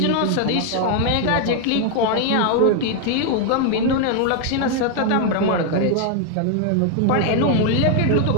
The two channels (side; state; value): both; different; correlation 0.00